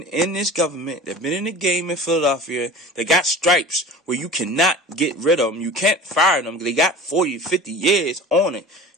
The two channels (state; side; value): normal; both; correlation 0.38